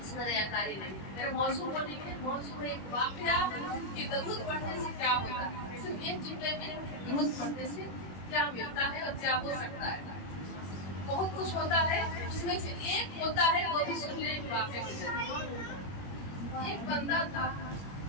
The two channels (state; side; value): late; right; 21 ms